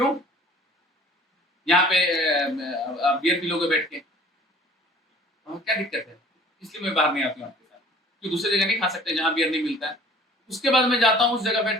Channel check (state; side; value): normal; both; correlation 0.50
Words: यहाँ पे बियर पी लोगे बैठ के, क्या दिक्कत है? इसलिए मैं बाहर नहीं आती हूँ आपके साथ, कि दूसरी जगह नहीं खा सकते जहाँ बियर नहीं मिलता है। उसके बाद मैं जाता हूँ उस जगह